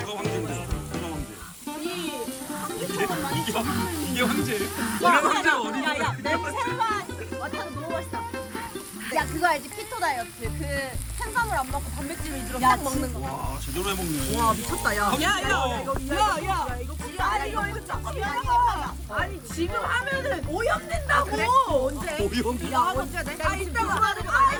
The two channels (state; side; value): identical; both; correlation 1.00